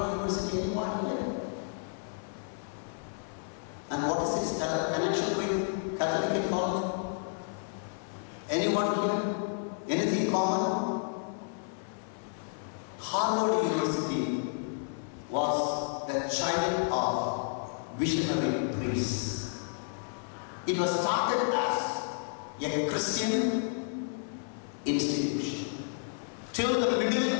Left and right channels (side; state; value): right; silent; 57 dB below the other